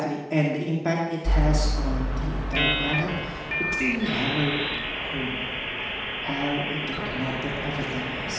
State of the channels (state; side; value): identical; both; correlation 1.00